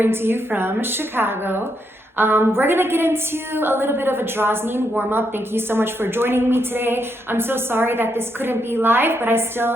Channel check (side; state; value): both; normal; correlation 0.79